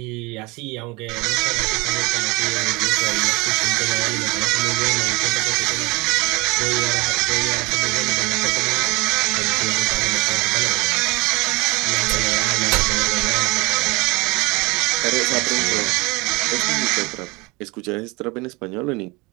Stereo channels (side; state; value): left; quieter; 25.1 dB